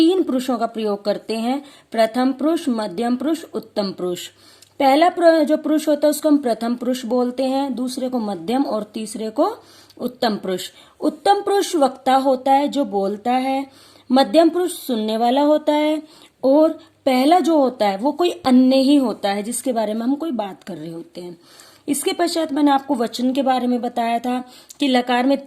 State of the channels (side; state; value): both; identical; correlation 1.00